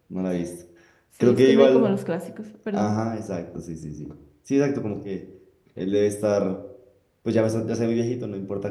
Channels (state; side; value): identical; both; correlation 1.00